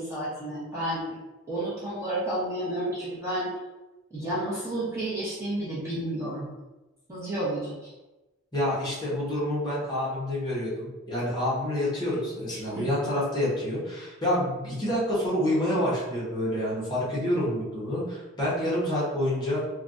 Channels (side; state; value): both; normal; correlation 0.40